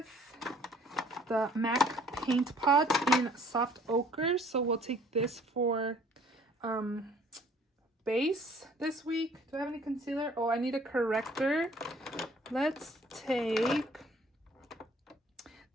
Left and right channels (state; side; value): normal; both; correlation 0.56